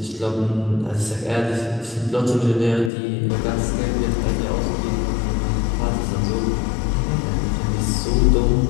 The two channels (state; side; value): drops out; right; at 2.9 s